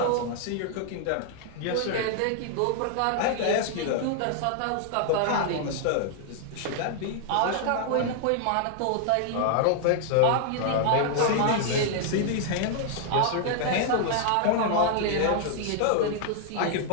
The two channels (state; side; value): different; both; correlation 0.00